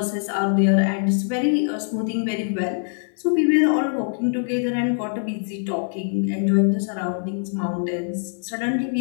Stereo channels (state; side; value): silent; right; digital silence